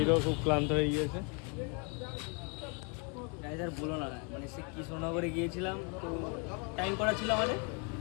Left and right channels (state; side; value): quieter; right; 34.9 dB